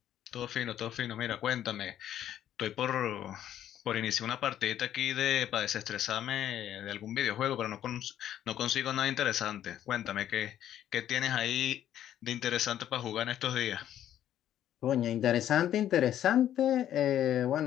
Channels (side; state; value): right; quieter; 11.2 dB